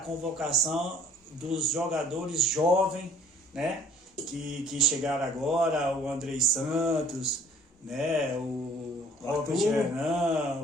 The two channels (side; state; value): both; normal; correlation 0.54